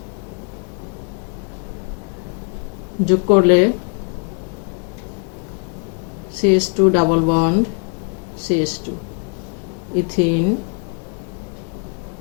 যোগ করলে CH2 double bond CH2 ethene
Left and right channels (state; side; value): quieter; right; 38.6 dB